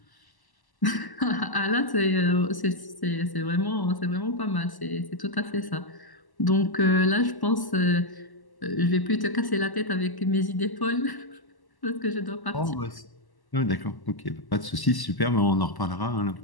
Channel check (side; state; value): right; late; 1.1 ms